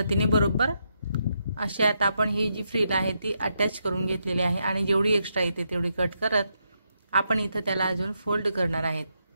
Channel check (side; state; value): both; inverted; correlation -0.81